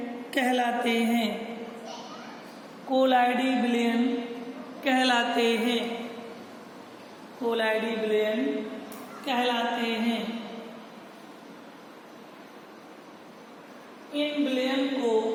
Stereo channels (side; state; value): both; identical; correlation 1.00